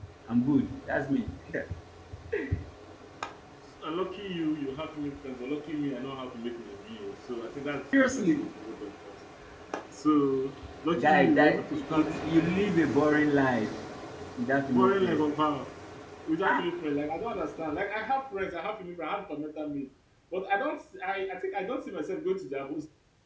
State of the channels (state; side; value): identical; both; correlation 1.00